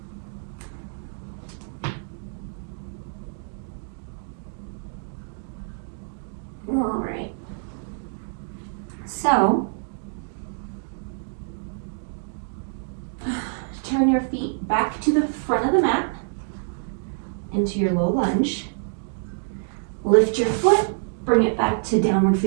All right, so turn your feet back to the front of the mat into your low lunge. Lift your foot, bring it back to downward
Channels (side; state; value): left; silent; digital silence